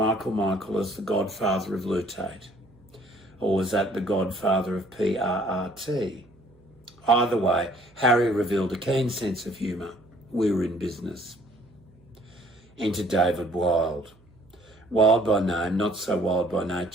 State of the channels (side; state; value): right; noise; hum, 29 dB below the sound